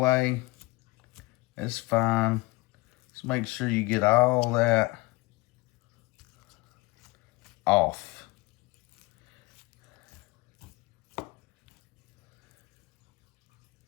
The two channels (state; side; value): quieter; right; 22.7 dB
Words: that's fine. Just make sure you get all that off.